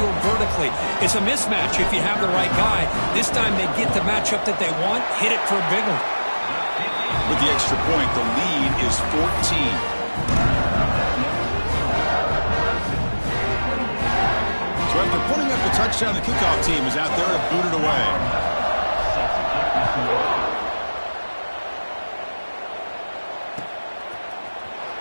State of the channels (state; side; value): inverted; both; correlation -1.00